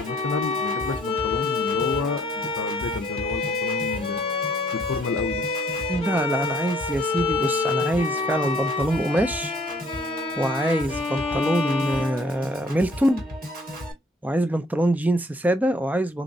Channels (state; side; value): normal; both; correlation 0.61